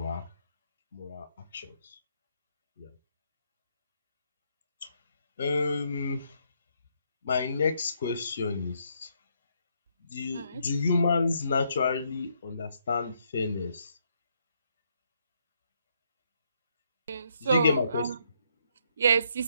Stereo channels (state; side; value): inverted; both; correlation -0.74